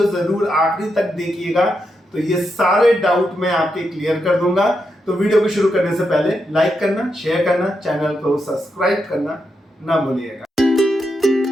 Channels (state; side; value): normal; both; correlation 0.84